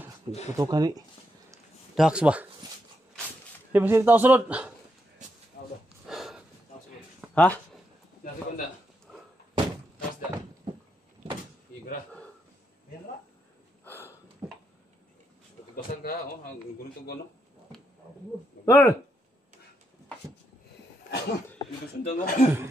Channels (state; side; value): normal; both; correlation 0.81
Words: Tutukan ni Dax ba? Di ba sila tao sunod? Ha? Nasi kunda. Tapos dah. Igra. Tugasan ka, oh, ang gunung tugon, no? Tol! Itu sundang, no?